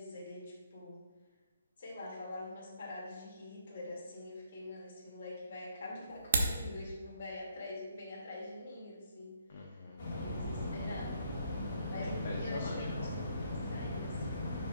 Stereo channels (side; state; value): both; inverted; correlation -0.71